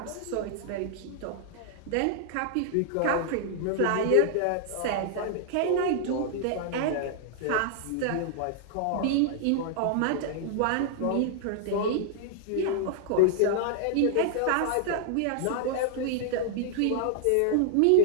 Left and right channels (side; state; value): both; different; correlation -0.01